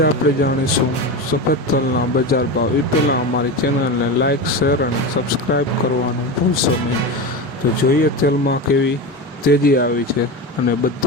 આપણે જાણીશું સફેદ તલના બજાર ભાવ। એ પહેલાં અમારી ચેનલને લાઇક, શેર અને સબસ્ક્રાઈબ કરવાનું ભૂલશો નહીં। તો જોઈએ તેલમાં કેવી તેજી આવી છે અને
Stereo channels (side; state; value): both; normal; correlation 0.22